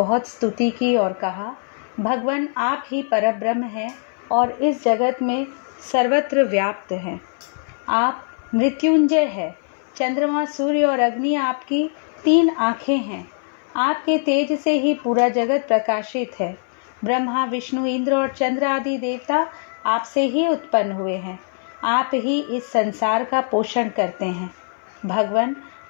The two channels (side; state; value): right; silent; 59 dB below the other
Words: स्तुति की और कहा, भगवान आप ही परब्रह्म हैं और इस जगत में सर्वत्र व्याप्त हैं। आप मृत्युंजय है। चंद्रमा, सूर्य और अग्नि आपकी 3 आँखें हैं। आपके तेज से ही पूरा जगत प्रकाशित है। ब्रह्मा, विष्णु, इंद्र और चंद्र आदि देवता आपसे ही उत्पन्न हुए हैं। आप ही इस संसार का पोषण करते हैं। भगवान,